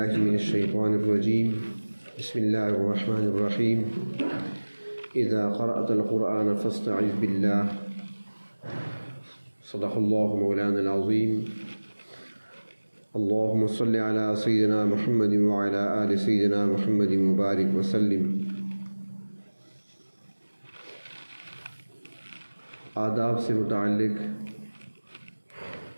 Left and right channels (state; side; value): inverted; both; correlation -1.00